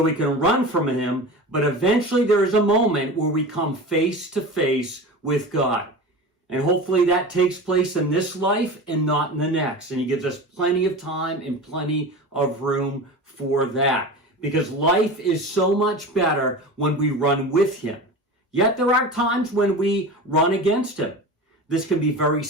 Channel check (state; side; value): normal; both; correlation 0.31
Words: we can run from him, but eventually there is a moment where we come face to face with God. And hopefully that takes place in this life and not in the next. And he gives us plenty of time and plenty of room for that. Because life is so much better when we run with him. Yet there are times when we run against him. This can be very